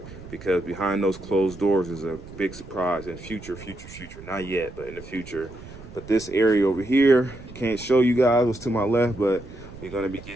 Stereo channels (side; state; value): right; noise; rumble, 16 dB below the sound